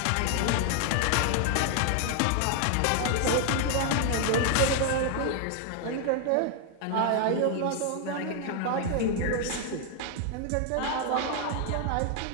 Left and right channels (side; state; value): both; different; correlation 0.00